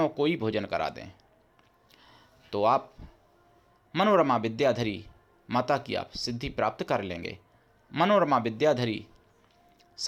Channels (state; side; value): identical; both; correlation 1.00